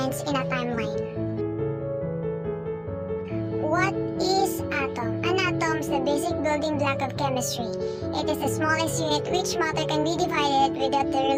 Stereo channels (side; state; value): both; identical; correlation 1.00